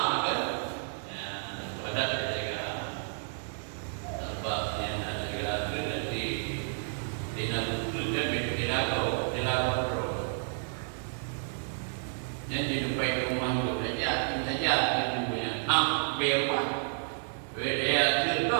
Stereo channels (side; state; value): left; silent; digital silence